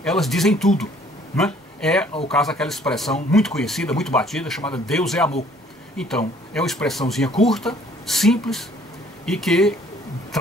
elas dizem tudo, né? É o caso daquela expressão muito conhecida, muito batida, chamada Deus é amor. Então, é uma expressãozinha curta, simples e que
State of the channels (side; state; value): both; normal; correlation 0.58